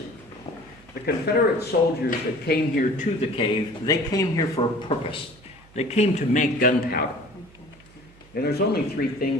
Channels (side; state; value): right; noise; hum, 26 dB below the sound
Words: The Confederate soldiers that came here to the cave, they came here for a purpose. They came to make gunpowder. And there's only three